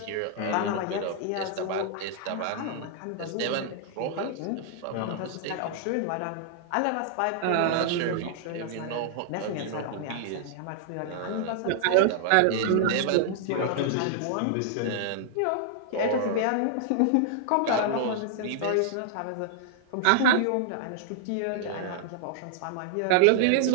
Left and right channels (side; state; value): both; different; correlation -0.01